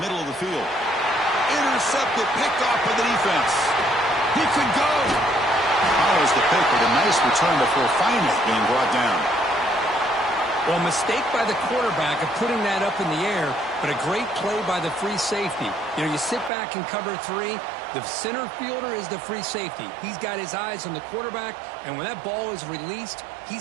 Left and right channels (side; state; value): left; drops out; at 16.5 s